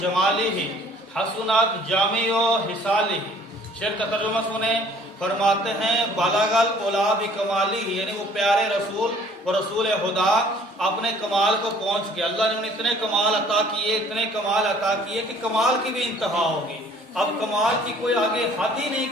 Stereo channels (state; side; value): normal; both; correlation 0.55